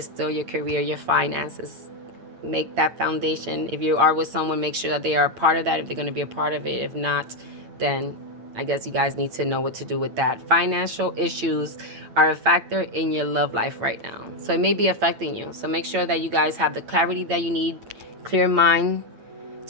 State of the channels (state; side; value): late; left; 8.9 ms